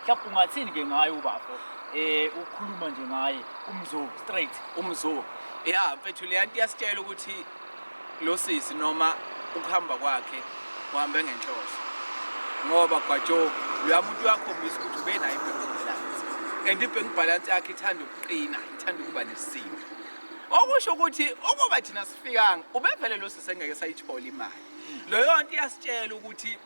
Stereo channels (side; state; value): both; inverted; correlation -1.00